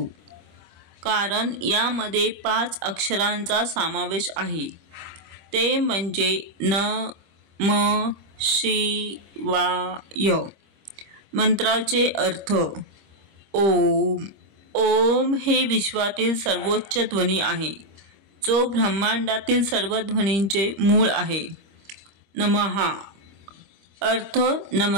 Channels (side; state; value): left; late; 25 ms